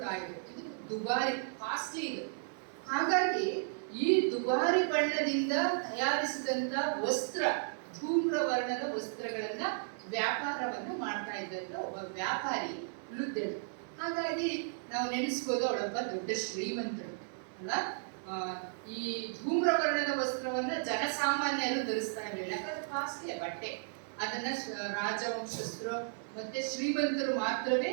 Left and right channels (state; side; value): silent; left; digital silence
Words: ಇದ್ರು. ಇದು ದುಬಾರಿ, ಕಾಸ್ಟ್ಲಿ ಇದು. ಹಾಗಾಗಿ ಈ ದುಬಾರಿ ಬಣ್ಣದಿಂದ ತಯಾರಿಸಿದಂತ ವಸ್ತ್ರ, ಧೂಮ್ರ ವರ್ಣದ ವಸ್ತ್ರಗಳನ್ನ ವ್ಯಾಪಾರವನ್ನ ಮಾಡ್ತಾ ಇದ್ದಂತ ಒಬ್ಬ ವ್ಯಾಪಾರಿ ಲುದ್ದಳು. ಹಾಗಾಗಿ ನಾವು ನೆನೆಸ್ಬೋದು ಅವಳೊಬ್ಬ ದೊಡ್ಡ ಶ್ರೀಮಂತಳು ಅಲ್ಲ. ಈ ಧೂಮ್ರ ವರ್ಣದ ವಸ್ತ್ರವನ್ನ ಜನಸಾಮಾನ್ಯರು ಧರಿಸ್ತಾ ಇರಲಿಲ್ಲ, ಯಾಕಂದ್ರೆ ಕಾಸ್ಟ್ಲಿಯ ಬಟ್ಟೆ. ಅದನ್ನ ರಾಜವಂಶಸ್ಥರು ಮತ್ತೆ ಶ್ರೀಮಂತರು ಮಾತ್ರವೇ